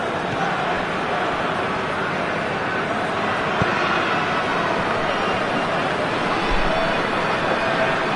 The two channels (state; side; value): identical; both; correlation 1.00